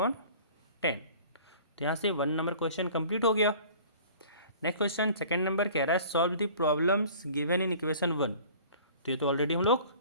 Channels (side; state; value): both; inverted; correlation -0.47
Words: तो यहाँ से 1 नंबर क्वेश्चन कंप्लीट हो गया। नेक्स्ट क्वेश्चन 2nd नंबर कह रहा है solve the problems given in equation 1। तो ये तो ऑलरेडी हम लोग